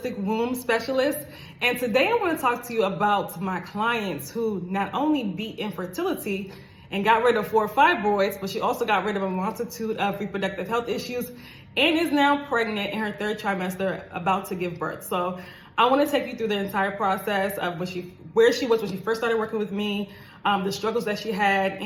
womb specialist. And today I want to talk to you about my clients who not only beat infertility and got rid of 4 fibroids, but she also got rid of a multitude of reproductive health issues and is now pregnant in her 3rd trimester, about to give birth. So I want to take you through the entire process of where she was when she first started working with me, the struggles that she had,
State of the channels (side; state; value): both; identical; correlation 1.00